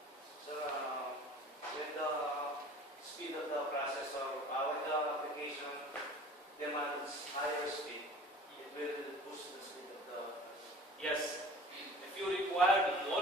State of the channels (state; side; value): normal; both; correlation 0.44